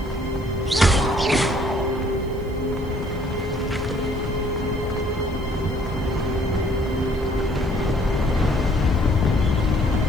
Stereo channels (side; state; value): right; noise; hiss, 27 dB below the sound